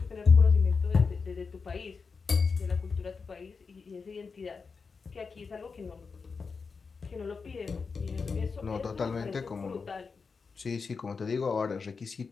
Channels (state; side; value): quieter; right; 5.0 dB